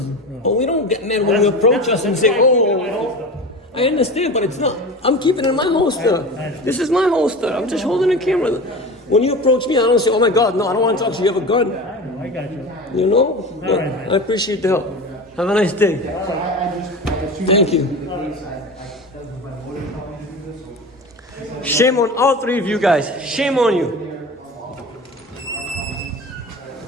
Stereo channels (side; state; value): both; normal; correlation 0.30